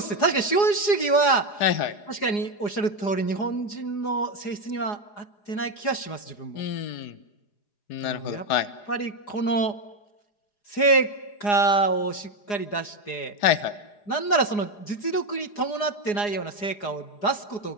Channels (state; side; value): late; right; 4.9 ms